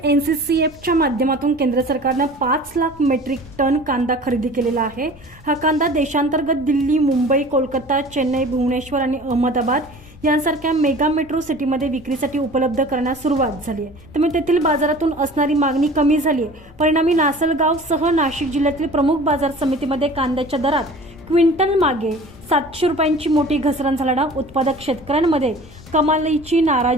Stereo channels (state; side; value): normal; both; correlation 0.43